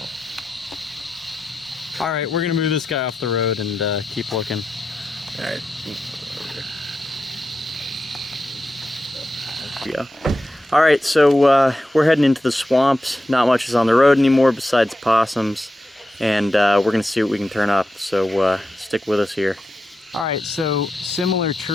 All right, we're gonna move this guy off the road and keep looking. All right. Yeah. All right, so we're heading into the swamps. Not much is on the road anymore besides possums, and we're gonna see what we can turn up. So stick with us here. All right, so similar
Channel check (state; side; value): normal; both; correlation 0.89